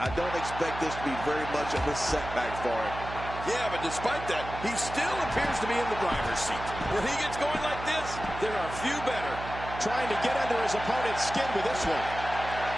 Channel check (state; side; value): noise; right; hum, 10 dB below the sound